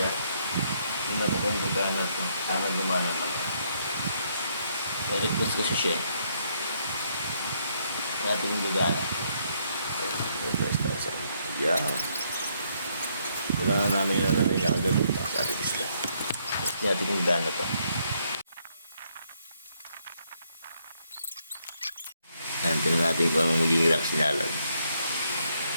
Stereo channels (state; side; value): inverted; both; correlation -0.73